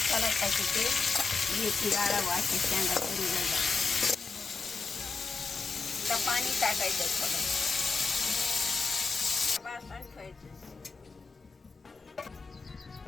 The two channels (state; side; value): quieter; right; 4.4 dB